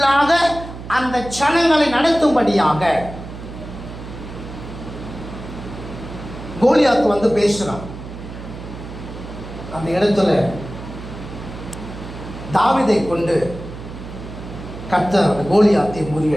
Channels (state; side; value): noise; right; hum, 12 dB below the sound